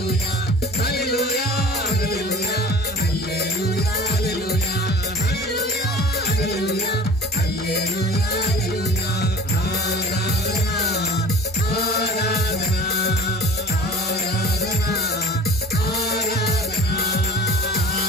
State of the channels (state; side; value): normal; both; correlation 0.43